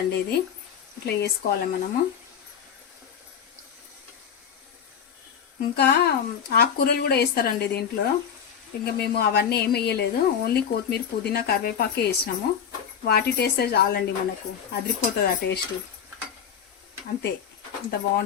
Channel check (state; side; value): quieter; right; 8.0 dB